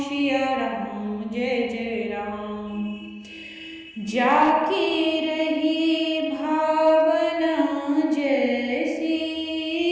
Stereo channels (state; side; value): identical; both; correlation 1.00